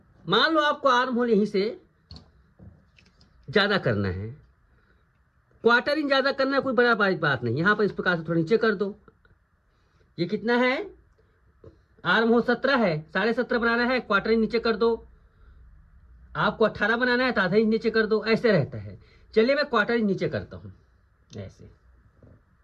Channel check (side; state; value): both; identical; correlation 1.00